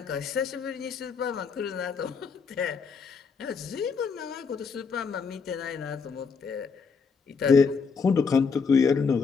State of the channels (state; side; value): quieter; right; 5.4 dB